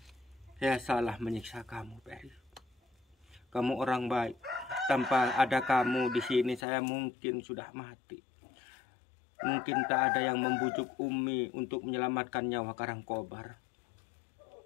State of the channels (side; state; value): right; drops out; at 6.6 s